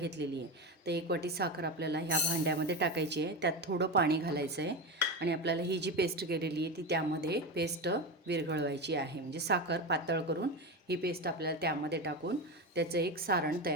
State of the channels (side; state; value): both; normal; correlation 0.19